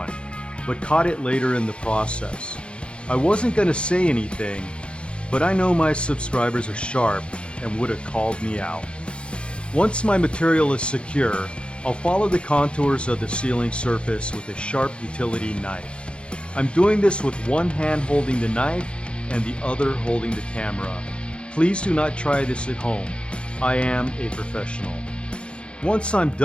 but caught it later in the process. I wasn't going to say anything, but I know my subscribers are sharp and would have called me out. Once my material is secure, I'll follow the contours of the sealing surface with a sharp utility knife. I'm doing this with one hand holding the knife and the other holding the camera. Please do not try this at home. I am a professional. Once I'm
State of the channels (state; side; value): late; right; 0.057 ms